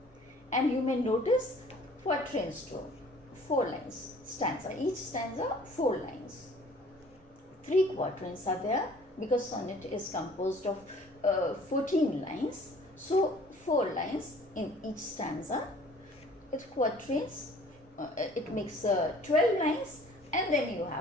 And you may notice quatrains too. 4 lines stanza. Each stanza 4 lines. 3 quatrains are there because sonnet is composed of 14 lines. So 4 lines in each stanza. It's quatrains. It makes 12 lines, and then you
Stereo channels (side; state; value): both; normal; correlation 0.52